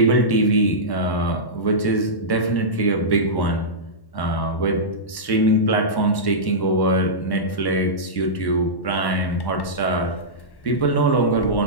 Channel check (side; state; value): right; late; 1.1 ms